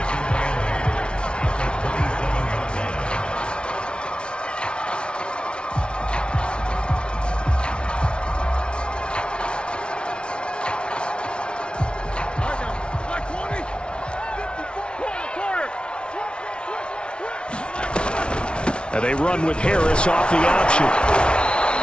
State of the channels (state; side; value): late; right; 0.057 ms